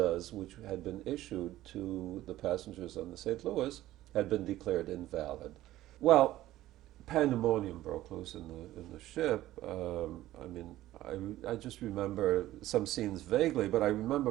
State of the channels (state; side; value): quieter; left; 15.0 dB